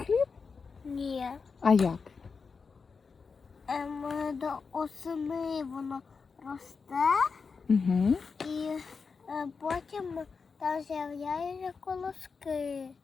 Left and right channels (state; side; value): quieter; right; 5.1 dB